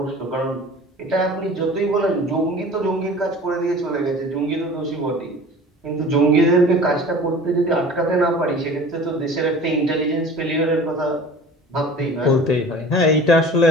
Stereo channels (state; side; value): normal; both; correlation 0.42